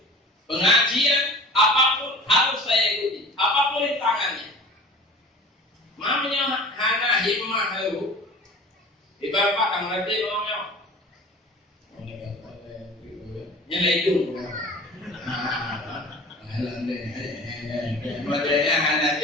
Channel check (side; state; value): both; normal; correlation 0.41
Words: pengajian apapun harus saya ikuti, apapun rintangannya. Mamanya hana himmah haru. Di bapak kan ngerti mamanya. Nyelai itu. Halang deh. Makanya hana